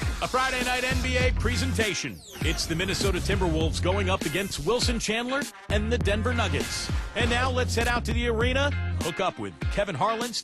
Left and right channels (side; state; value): both; identical; correlation 1.00